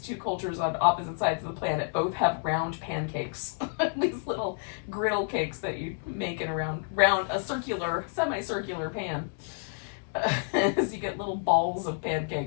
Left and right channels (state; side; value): silent; right; digital silence